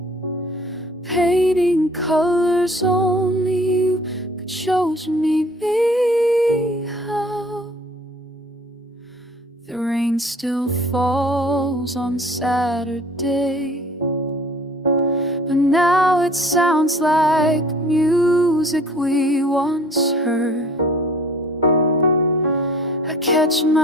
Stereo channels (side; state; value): both; normal; correlation 0.51